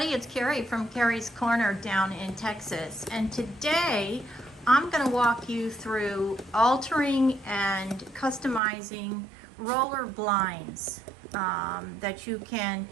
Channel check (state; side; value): drops out; left; at 8.6 s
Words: it's Carrie from Carrie's Corner down in Texas, and today I'm going to walk you through altering and customizing roller blinds that you can